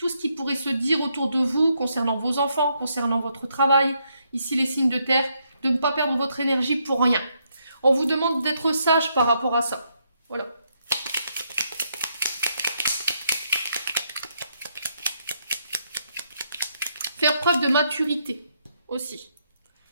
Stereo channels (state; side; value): inverted; both; correlation -0.76